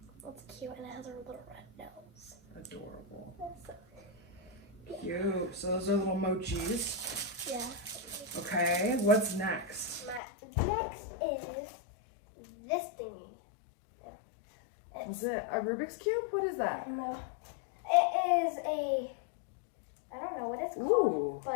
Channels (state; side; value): drops out; right; at 10.2 s